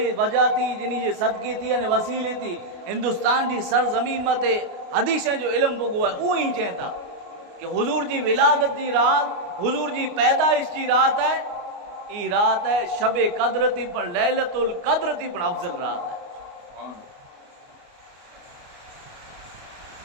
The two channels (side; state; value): left; late; 29 ms